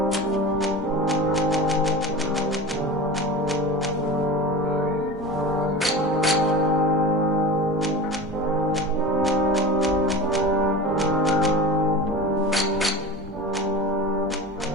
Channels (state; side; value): normal; both; correlation 0.31